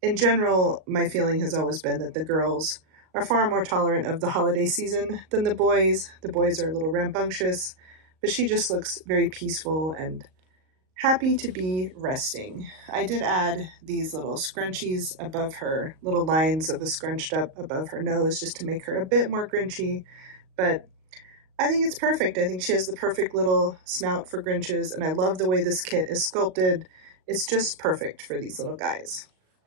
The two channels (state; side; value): late; left; 38 ms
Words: in general, my feeling has always been that the girls are far more tolerant of the holiday season than the boys. The boys are a little rambunctious, but she just looks very peaceful and happy to be resting. I did add these little scrunchies above her, little lines of a scrunched up above her nose just to make her a bit more Grinchy, but I think it's perfect. I think she has the perfect little snout for Grinches, and I love the way this kit is sculpted. It's just perfect for these little guys.